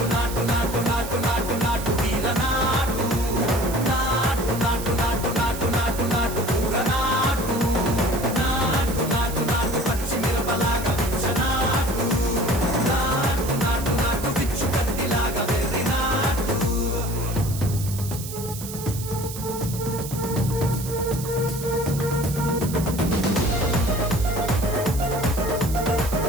నాటు నాటు నాటు నాటు నాటు తీర నాటు నాటు నాటు నాటు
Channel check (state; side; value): noise; right; hiss, 11 dB below the sound